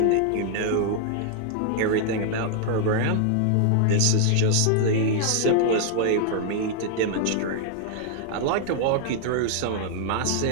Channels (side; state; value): both; different; correlation 0.00